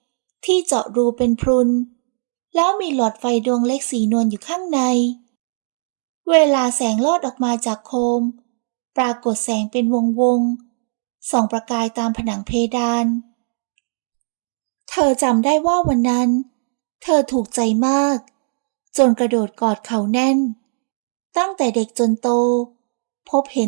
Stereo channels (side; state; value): left; silent; digital silence